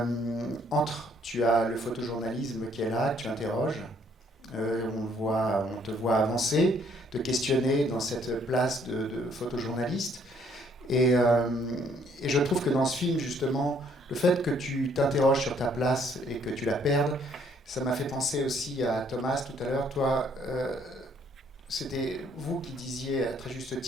Tu as le photojournalisme qui est là, que tu interroges. On te voit avancer, te questionner dans cette place de photojournaliste. Et je trouve que dans ce film, justement, le fait que tu t'interroges sur ta place et que tu la perdes, ça m'a fait penser aussi à Thomas tout à l'heure. Toi, c'était vous qui disiez à très juste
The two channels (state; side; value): normal; both; correlation 0.65